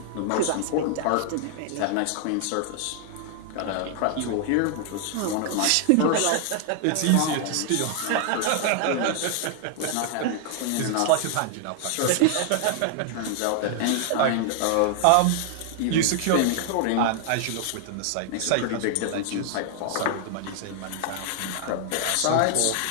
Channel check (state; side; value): different; both; correlation 0.00